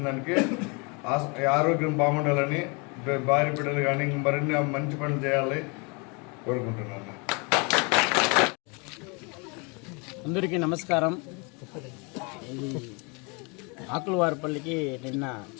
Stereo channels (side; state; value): right; quieter; 31.6 dB